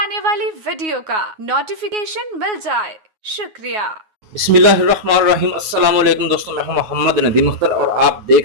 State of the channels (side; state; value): left; late; 9.5 ms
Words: वाली वीडियो का नोटिफिकेशन मिल जाए। शुक्रिया। बिस्मिल्लाहिर्रहमानिर्रहीम। अस्सलाम वालेकुम दोस्तों, मैं हूं मोहम्मद नदीम अख्तर और आप